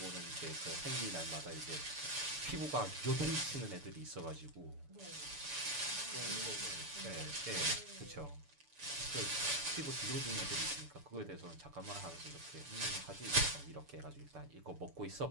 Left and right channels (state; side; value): late; left; 6.9 ms